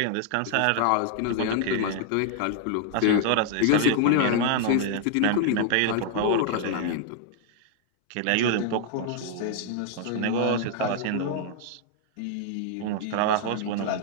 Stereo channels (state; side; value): different; both; correlation 0.00